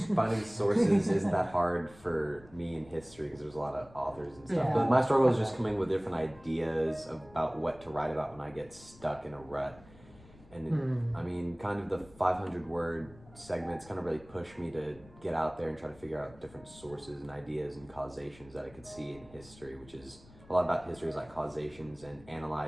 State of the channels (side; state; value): left; noise; rumble, 23 dB below the sound